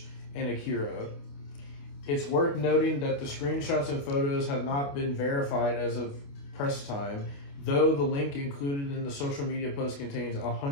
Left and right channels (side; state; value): right; late; 28 ms